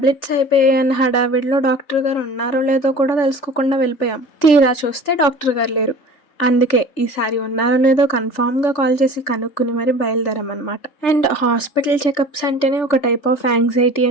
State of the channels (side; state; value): right; late; 3.4 ms